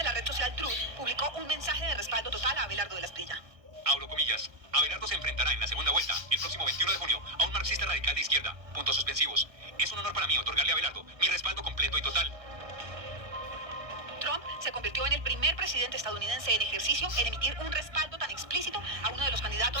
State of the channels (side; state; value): left; late; 1.2 ms